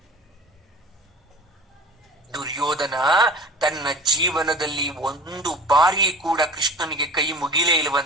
ದುರ್ಯೋಧನ ತನ್ನ ಜೀವನದಲ್ಲಿ ಒಂದು ಬಾರಿ ಕೂಡ ಕೃಷ್ಣನಿಗೆ ಕೈ ಮುಗಿಲೇ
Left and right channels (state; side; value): normal; both; correlation 0.39